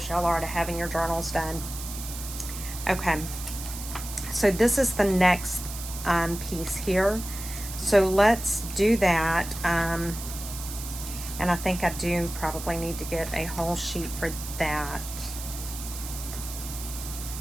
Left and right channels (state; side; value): noise; right; hiss, 10 dB below the sound